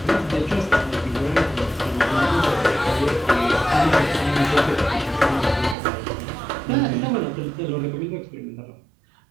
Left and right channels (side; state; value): left; drops out; at 5.8 s